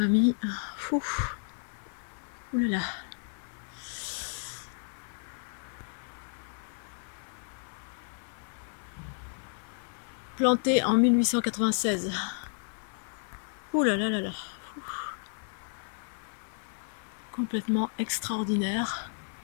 Ouh là là. Planté en 1896. Ouh là là là là. Complètement extraordinaire.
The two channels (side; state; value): right; silent; 56 dB below the other